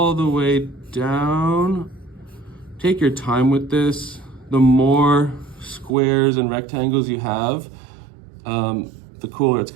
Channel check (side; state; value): left; drops out; at 5.9 s